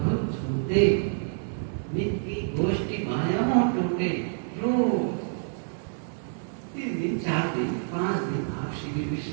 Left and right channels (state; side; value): silent; left; digital silence